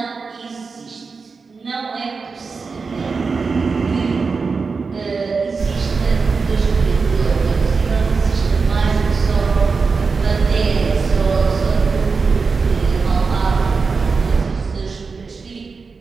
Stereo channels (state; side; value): quieter; left; 4.7 dB